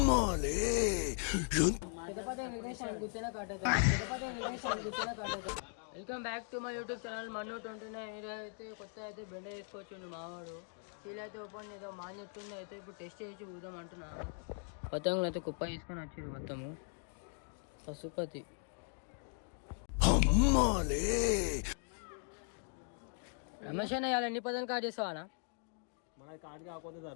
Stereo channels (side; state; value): right; silent; 52 dB below the other